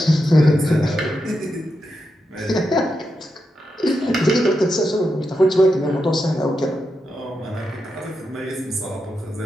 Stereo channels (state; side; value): normal; both; correlation 0.86